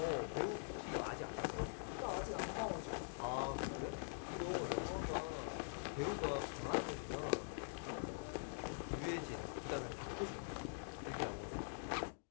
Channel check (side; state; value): right; silent; digital silence